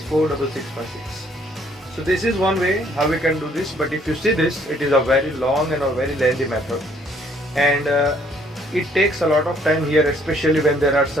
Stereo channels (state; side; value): normal; both; correlation 0.64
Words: 46656. So this is one way how we can do this, but if you see this, it is a very long and a very lengthy method, and it takes a lot of time here, especially when there are